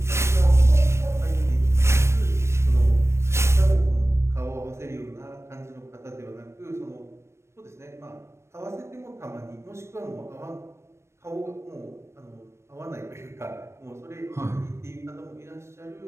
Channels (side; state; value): left; late; 0.13 ms